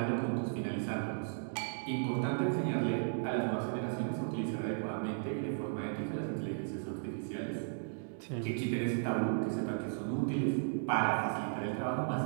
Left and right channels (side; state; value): left; silent; digital silence